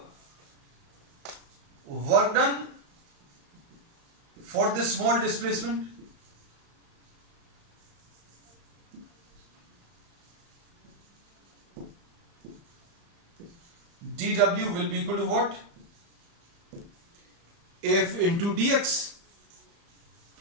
work done for this small displacement, dw will be equal to what, f into dx।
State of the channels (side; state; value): left; late; 35 ms